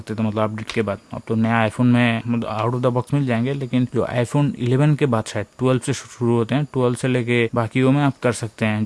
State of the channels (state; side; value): identical; both; correlation 1.00